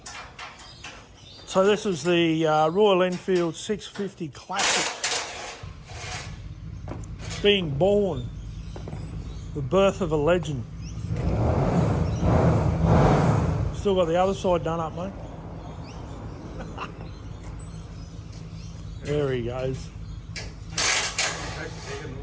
So this is the Royal Enfield 650 Classic. Being born. The birth of a legend. Still got the other side done up, mate. There he goes.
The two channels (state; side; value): identical; both; correlation 1.00